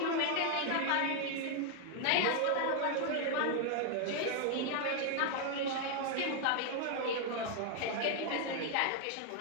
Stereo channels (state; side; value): different; both; correlation 0.00